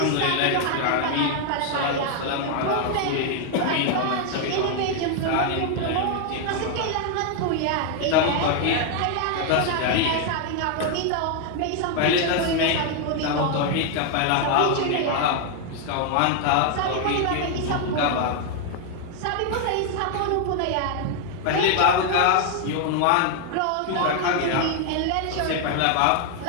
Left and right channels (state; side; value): different; both; correlation 0.00